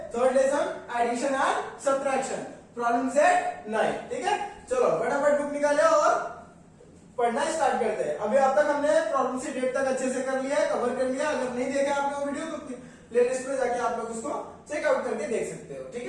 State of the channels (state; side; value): identical; both; correlation 1.00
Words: third lesson addition and subtraction problem set 9, ठीक है। चलो फटाफट बुक निकाले और पढ़ना स्टार्ट करते हैं। अभी अब तक हमने प्रॉब्लम सेट 8 तक अच्छे से कर लिया है, कवर कर लिया। अगर नहीं देखा आपने वो वीडियो तो प्लेलिस्ट पे जाके आप लोग उसको चेकआउट करके देख सकते हो, ठीक